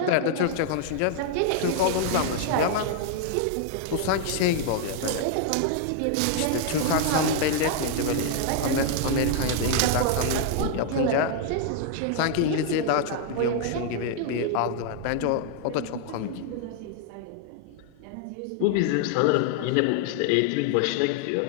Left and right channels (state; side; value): different; both; correlation 0.00